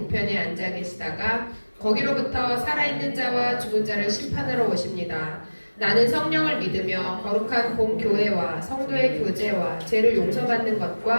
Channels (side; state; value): both; inverted; correlation -1.00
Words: 앉아 계시다가 거기로부터 살아있는 자와 죽은 자를 심판하러 오십니다. 나는 성령을 믿으며 거룩한 공교회와 성도의 교제와 죄를 용서받는